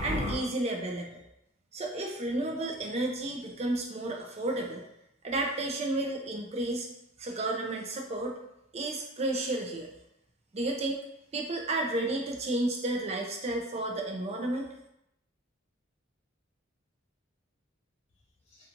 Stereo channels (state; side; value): normal; both; correlation 0.39